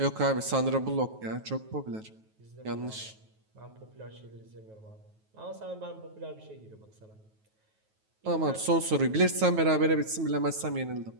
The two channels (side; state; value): left; late; 9.3 ms